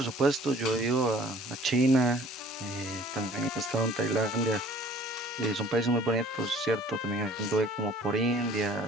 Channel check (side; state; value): both; normal; correlation 0.52